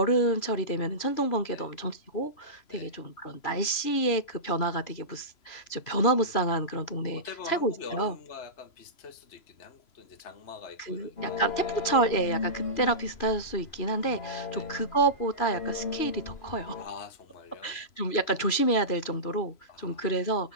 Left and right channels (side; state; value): right; late; 3.0 ms